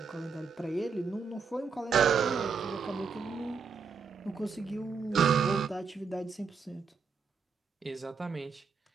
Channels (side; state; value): left; quieter; 5.5 dB